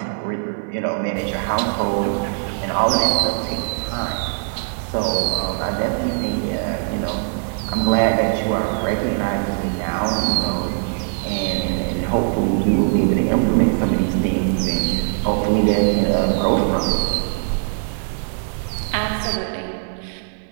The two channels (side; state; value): left; silent; 65 dB below the other